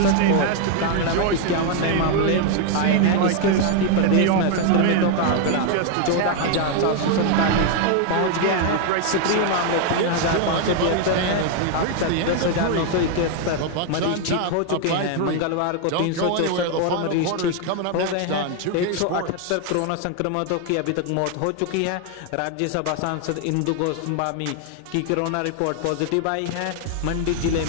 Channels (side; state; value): both; different; correlation 0.01